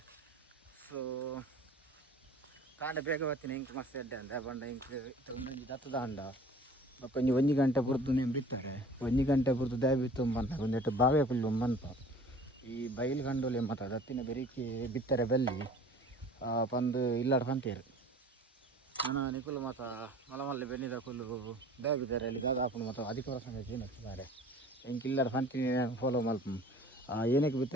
ಸೊ ಕಾಂಡೆ ಬೇಗ ಬತ್ತೀನಿ ಇಂಕ್ ಮಸ್ತ್ ಎಡ್ಡೆ ಅಂದ ಬಂಡ ಇಂಕ್ ಒಂದೊಂಜಿ ದತ್ತದ ಅಂಡ ಬಕ್ಕೊಂಜಿ 1 ಗಂಟೆ ಬುರ್ದು ನೀವು ಬಿತ್ತಾರೆ 1 ಗಂಟೆ ಬುರ್ದು ದೇ ಬಿತ್ತು ಬಂದಾಗ ಒಂದೆಟ್ಟು ಬಾವೆ ಫುಲ್ಲು ಮನ್ಪ ಈ ಬೈಲು ಕಂಡೋಲಿ ಮತ್ತು ದತ್ತಿನ ಬೆರಿಕೆ ಬಿತ್ತಾರೆ ಬೆಲ್ಲಿ ಬಂದು ಇಲ್ಲಾಡ ಪಂತೇರು ನಾನು ನಿಕುಲು ಮತ್ತು ಮಲಮಲ್ಲಿ ಬೆನ್ನಿದ ಕುಲ್ಲು ಬೇಬಿದ್ದಾರೆ ಅಲ್ಲಿ ಗಾಗ ಹಾಕೊಂಡು ಮತ್ತು ಅದಕ್ಕೆ ವರ್ಷ ಏನಿದ್ದಾರೆ ಹೆಂಗೆ ಇಲ್ಲಾರ ಪಂತೀನಿ ಫಾಲೋ ಮಲ್ಪ ಏನಕ್ಕೆ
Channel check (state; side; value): normal; both; correlation 0.46